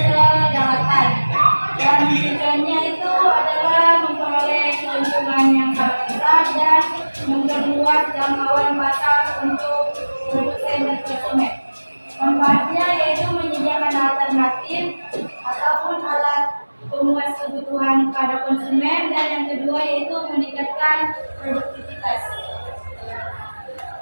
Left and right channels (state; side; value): inverted; both; correlation -1.00